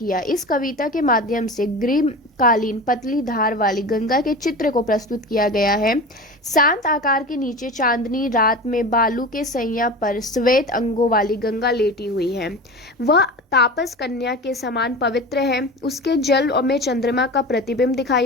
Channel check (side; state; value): both; normal; correlation 0.31